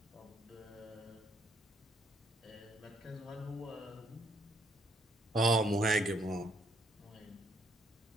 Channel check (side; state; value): both; normal; correlation 0.69